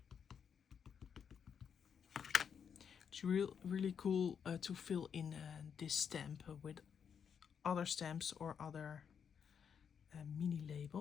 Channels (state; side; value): quieter; right; 7.3 dB